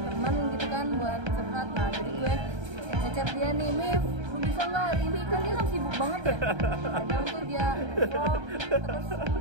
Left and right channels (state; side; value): late; left; 1.3 ms